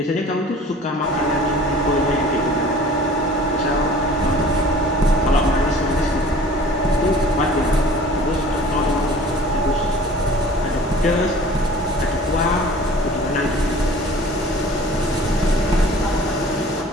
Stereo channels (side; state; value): both; normal; correlation 0.46